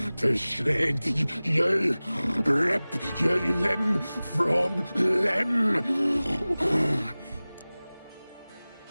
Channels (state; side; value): inverted; both; correlation -0.98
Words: to shred you, rip you limb from limb.